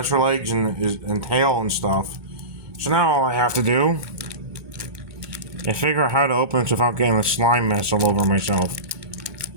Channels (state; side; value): late; left; 2.2 ms